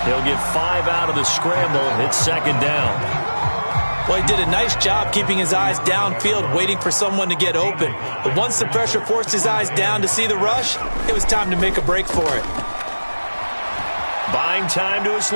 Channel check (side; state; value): both; inverted; correlation -1.00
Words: He'll get 5 out of the scramble. It's 2nd down. Well, he did a nice job keeping his eyes downfield, waiting for someone to get open. But once the pressure forced his eyes down to see the rush, it was time to make a break for it. Buying time to his